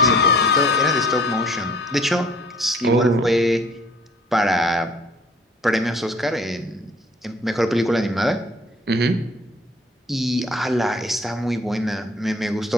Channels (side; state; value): both; normal; correlation 0.54